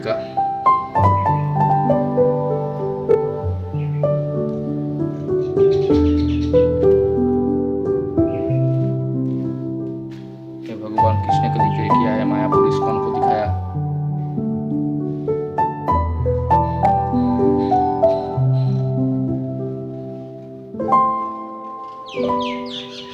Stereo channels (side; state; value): both; identical; correlation 1.00